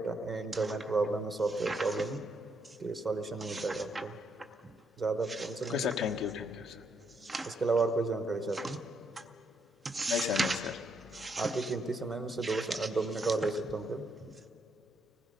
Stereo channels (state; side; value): normal; both; correlation 0.75